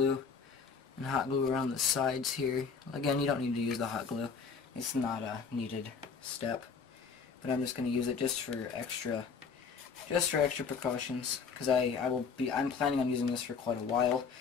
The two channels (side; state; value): right; quieter; 5.5 dB